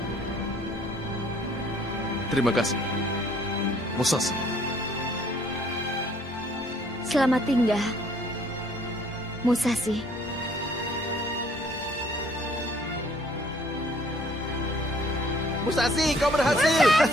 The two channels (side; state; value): both; normal; correlation 0.59